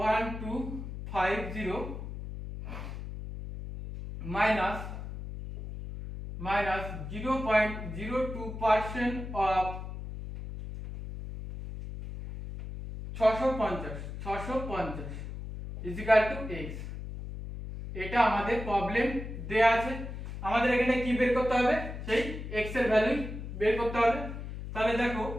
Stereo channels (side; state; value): left; noise; hum, 8 dB below the sound